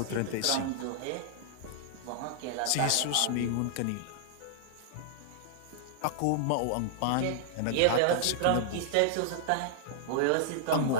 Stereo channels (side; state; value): both; different; correlation -0.01